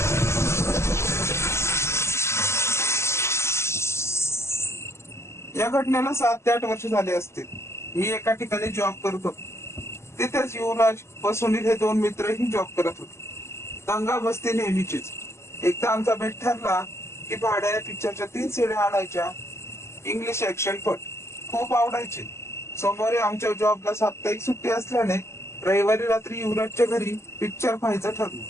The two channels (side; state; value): right; late; 0.13 ms